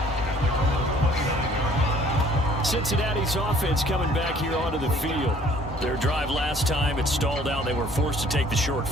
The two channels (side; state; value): both; normal; correlation 0.57